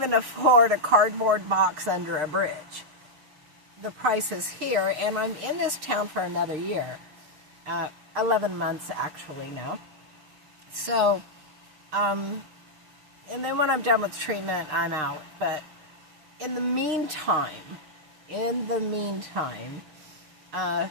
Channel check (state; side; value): late; left; 6.5 ms